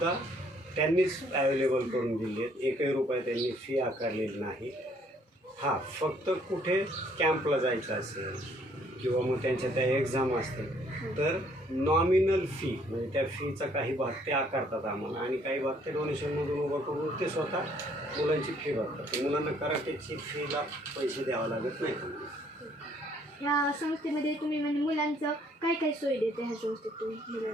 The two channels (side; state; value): both; normal; correlation 0.64